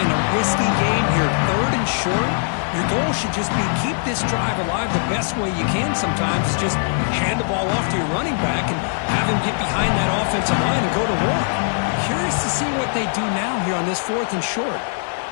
a risky game here, 3rd and short. Your goal should just be keep this drive alive the best way you can sometimes. Is just hand the ball off to your running back and have him get behind that offensive line and go to work. Curious to see what they do now here on this 4th and short.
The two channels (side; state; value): right; silent; digital silence